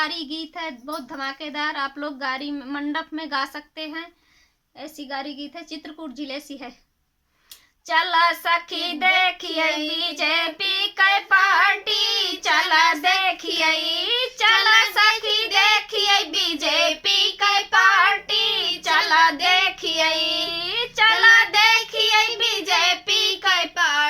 गीत है, बहुत धमाकेदार। आप लोग गारी मंडप में गा सकते हैं। ऐसी गारी गीत है, चित्रकूट जिले से है। चला सखी देखिए बीजेपी के पार्टी, चला देखिए, चला सखी देखिए बीजेपी के पार्टी, चला देखिए, चला देखिए बीजेपी के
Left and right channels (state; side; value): identical; both; correlation 1.00